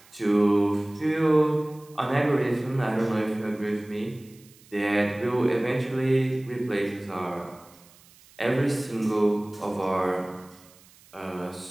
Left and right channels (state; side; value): noise; right; hiss, 26 dB below the sound